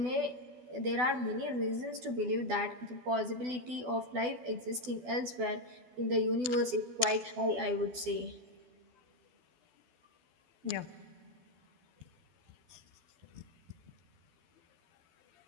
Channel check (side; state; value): left; late; 12 ms